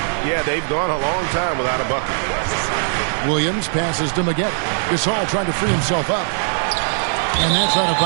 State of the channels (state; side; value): silent; left; 66 dB below the other